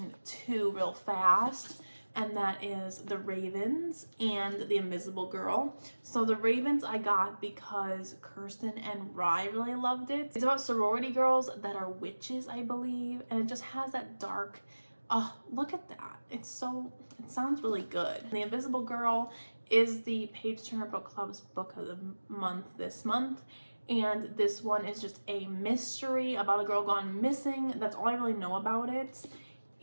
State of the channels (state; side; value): inverted; both; correlation -1.00